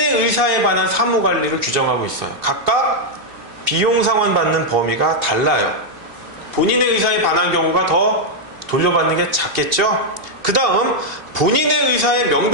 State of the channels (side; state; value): left; late; 2.8 ms